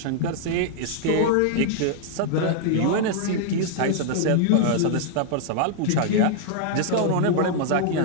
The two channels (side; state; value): both; different; correlation -0.01